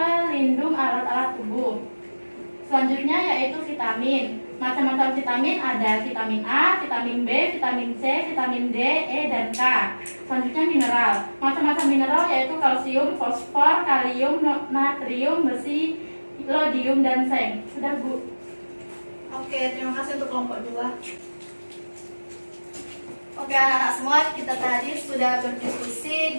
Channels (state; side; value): inverted; both; correlation -1.00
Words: alat-alat tubuh. Selanjutnya yaitu vitamin. Macam-macam vitamin ada vitamin A, vitamin B, vitamin C, vitamin D, E, dan K. Selanjutnya mineral. Macam-macam mineral yaitu kalsium, fosfor, kalium, natrium, besi, iodium, dan seng. Sudah, Bu? Oke, terima kasih untuk kelompok 2. Oke anak-anak semua, kita tadi sudah berdiskusi.